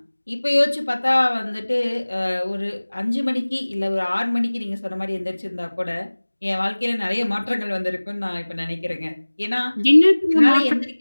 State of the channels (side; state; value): both; inverted; correlation -1.00